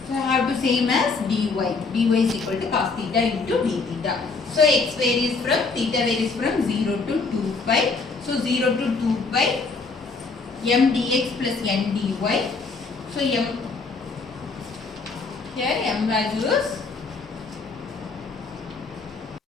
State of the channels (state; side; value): quieter; right; 4.3 dB